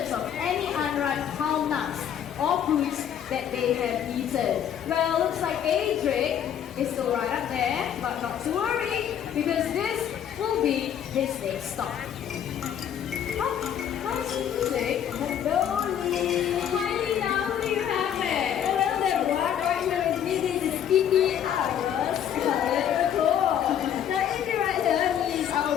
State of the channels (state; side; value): quieter; right; 9.4 dB